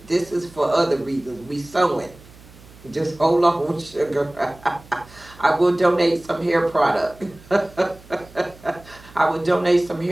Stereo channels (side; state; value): right; noise; hum, 23 dB below the sound